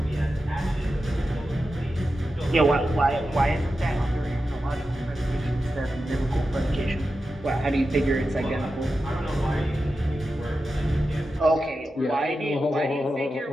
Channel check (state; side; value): normal; both; correlation 0.91